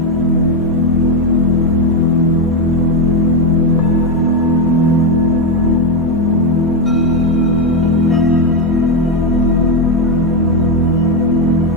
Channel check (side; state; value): both; normal; correlation 0.07